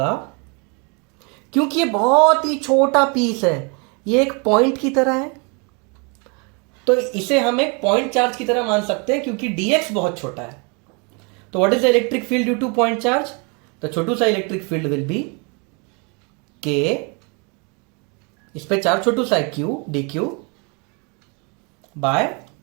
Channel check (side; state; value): left; quieter; 33.2 dB